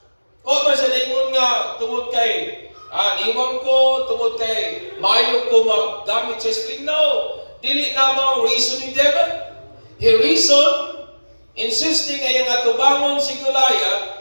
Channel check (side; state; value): both; inverted; correlation -1.00